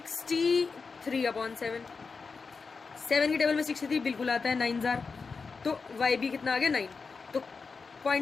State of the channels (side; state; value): right; quieter; 4.8 dB